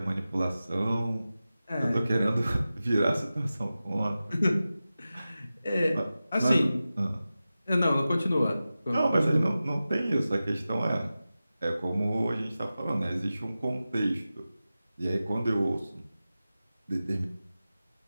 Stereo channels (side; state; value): both; inverted; correlation -0.94